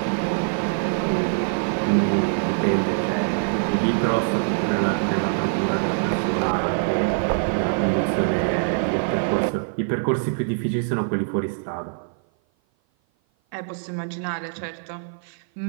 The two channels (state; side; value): silent; left; 56 dB below the other